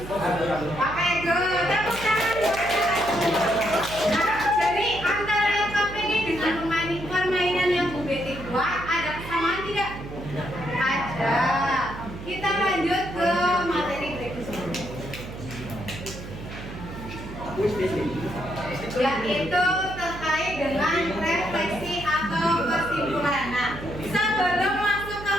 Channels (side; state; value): right; noise; hum, 11 dB below the sound